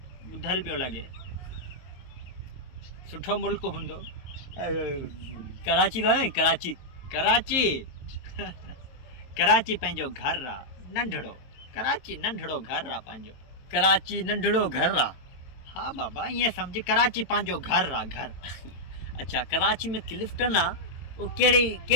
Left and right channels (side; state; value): right; late; 22 ms